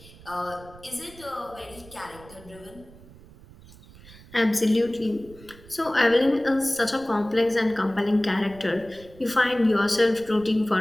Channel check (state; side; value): noise; right; rumble, 21 dB below the sound